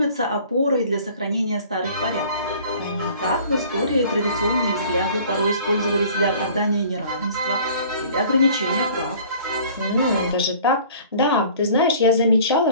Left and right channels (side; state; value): both; inverted; correlation -0.50